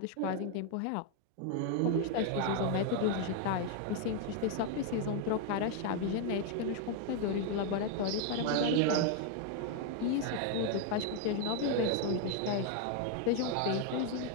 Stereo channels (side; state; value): both; different; correlation 0.00